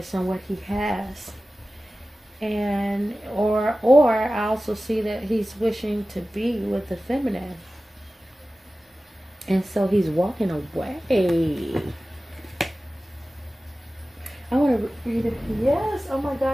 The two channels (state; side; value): normal; both; correlation 0.96